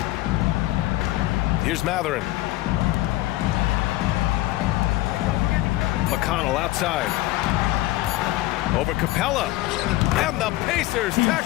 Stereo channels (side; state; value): right; quieter; 17.8 dB